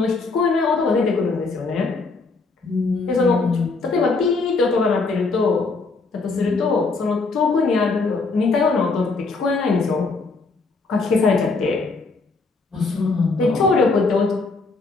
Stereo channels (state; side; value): quieter; right; 3.9 dB